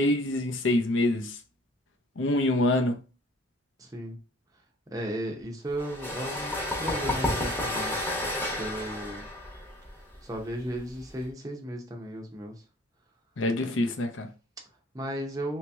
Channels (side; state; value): both; normal; correlation 0.52